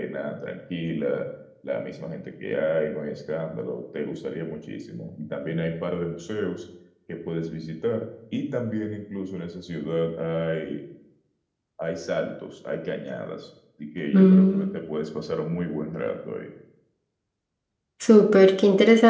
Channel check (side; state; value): both; identical; correlation 1.00